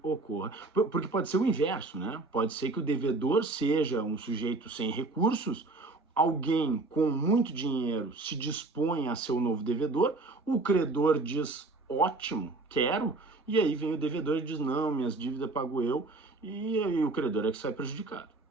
ocorra. Porque pode ser o inverso, né? Pode ser que o devedor seja um sujeito sem recursos, alguém com muito dinheiro se dispõe a ser o novo devedor, o credor diz, ótimo, quero, e aí vem o devedor e diz, não, minhas dívidas pago eu, e aí o credor é que sai prejudicado.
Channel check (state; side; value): quieter; left; 3.3 dB